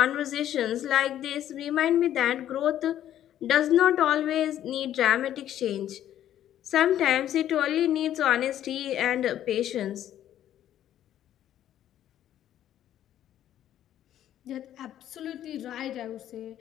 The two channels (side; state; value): right; quieter; 11.5 dB